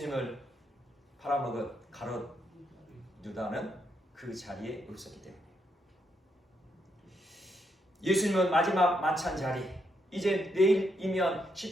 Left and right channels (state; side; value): normal; both; correlation 0.79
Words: 팔아먹은 가롯 유다는 그 자리에 없었기 때문에 예수님은 마지막 만찬 자리, 이제 내일이면